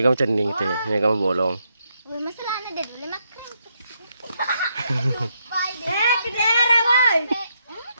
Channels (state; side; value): inverted; both; correlation -0.78